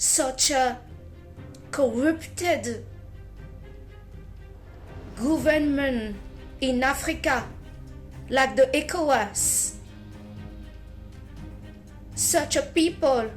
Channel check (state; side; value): identical; both; correlation 1.00